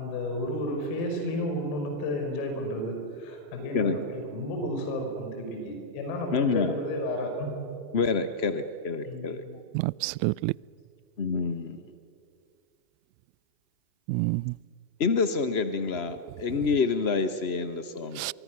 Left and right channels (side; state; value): right; late; 3.0 ms